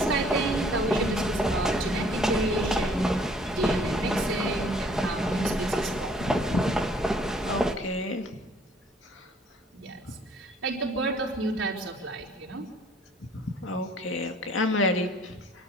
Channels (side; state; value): both; normal; correlation 0.59